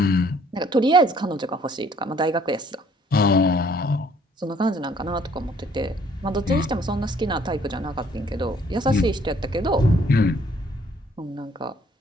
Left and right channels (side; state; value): both; normal; correlation 0.62